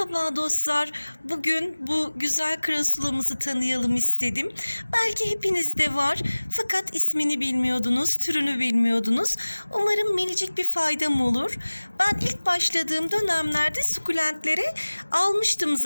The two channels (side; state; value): both; inverted; correlation -1.00